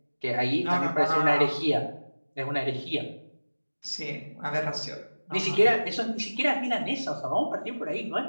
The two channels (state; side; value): inverted; both; correlation -1.00